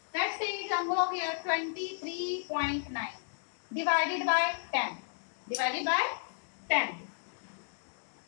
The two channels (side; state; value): right; silent; digital silence